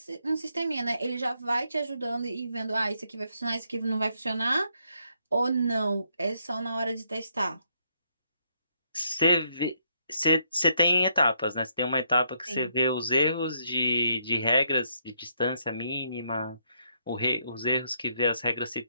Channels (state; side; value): inverted; both; correlation -0.74